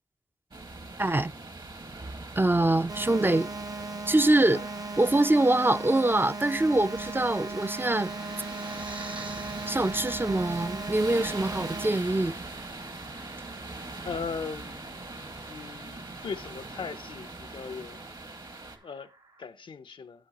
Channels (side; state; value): both; normal; correlation 0.83